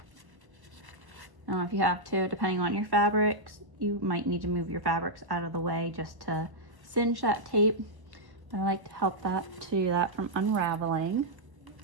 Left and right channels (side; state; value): left; late; 1.1 ms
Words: Now if you have to, depending on your fabrics, you might need to move your fabrics out of the way just to singe that tape. But I like to help that to do that from unraveling.